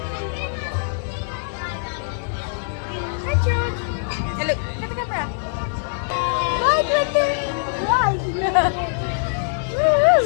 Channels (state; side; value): silent; right; digital silence